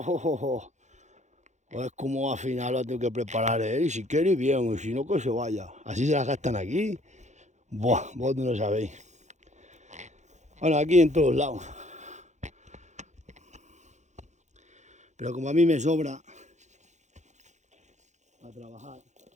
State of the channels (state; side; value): late; left; 0.34 ms